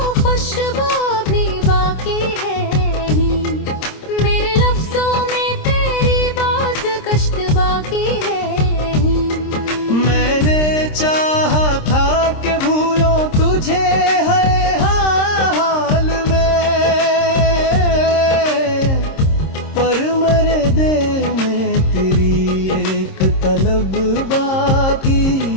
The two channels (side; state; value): right; late; 26 ms